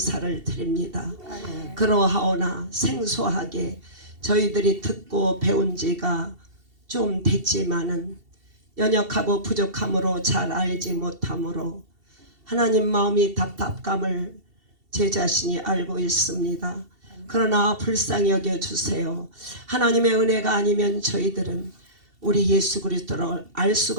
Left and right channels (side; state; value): left; late; 2.7 ms